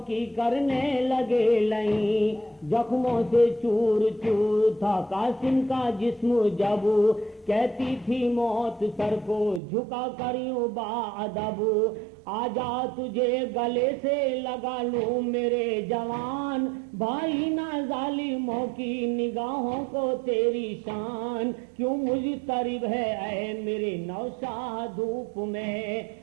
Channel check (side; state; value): left; drops out; at 9.6 s